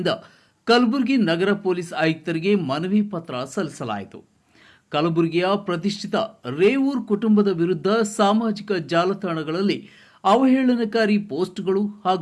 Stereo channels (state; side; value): identical; both; correlation 1.00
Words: ಕಲಬುರಗಿ ನಗರ ಪೊಲೀಸ್ ಆಯುಕ್ತರಿಗೆ ಮನವಿ ಪತ್ರ ಸಲ್ಲಿಸಲಾಯಿತು. ಕಲಬುರಗಿಯ ಪ್ರತಿಷ್ಠಿತ ರೇವೂರ್ ಕುಟುಂಬದ ವಿರುದ್ಧ ಸಾಮಾಜಿಕ ಜಾಲತಾಣಗಳಲ್ಲಿ ಅವಹೇಳನಕಾರಿ ಪೋಸ್ಟ್ಗಳು